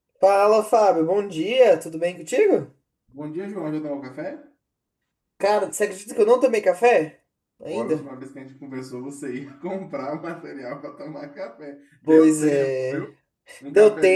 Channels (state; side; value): identical; both; correlation 1.00